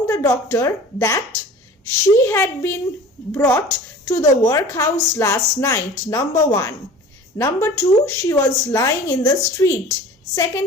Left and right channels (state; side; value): normal; both; correlation 0.42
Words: the doctor that she had been brought to the workhouse last night. Number 1. Number 2, she was lying in the street.